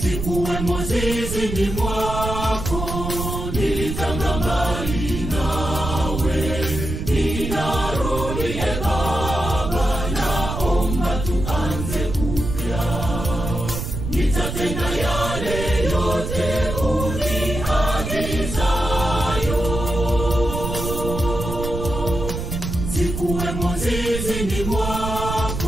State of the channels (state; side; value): noise; right; rumble, 5 dB below the sound